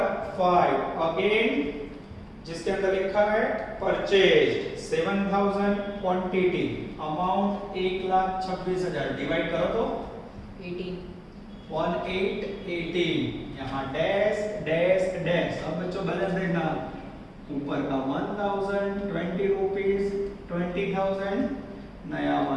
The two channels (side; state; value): both; identical; correlation 1.00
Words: 5 अगेन जिसके अंदर लिखा है परचेज 7000 क्वांटिटी अमाउंट 1,26,000 डिवाइड करो तो 18 यहां डैश डैश डैश अब बच्चों बैलेंस देखना ऊपर का 1000 20 रुपीस 20000 नया